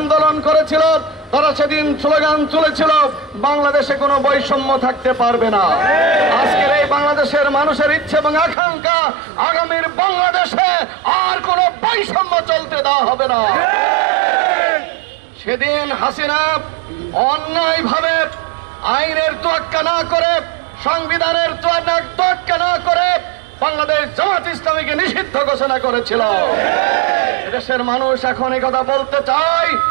করেছিল, তারা সেদিন স্লোগান তুলেছিল, বাংলাদেশে কোনো বৈষম্য থাকতে পারবে না। আজকের এই বাংলাদেশের মানুষের ইচ্ছে এবং আকাঙ্ক্ষা, আগামীর বাংলাদেশে আর কোনো বৈষম্য চলতে দেওয়া হবে না। সেদিন হাসিনা অন্যায়ভাবে আইনের তোয়াক্কা না করে, সংবিধানের তোয়াক্কা না করে বাংলাদেশ জামাত ইসলামীকে নিষিদ্ধ ঘোষণা করেছিল। দেশের মানুষ এখন এই কথা বলতে চায়,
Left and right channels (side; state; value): left; drops out; at 8.6 s